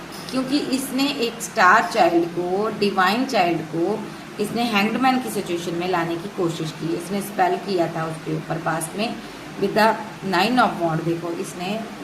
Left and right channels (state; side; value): identical; both; correlation 1.00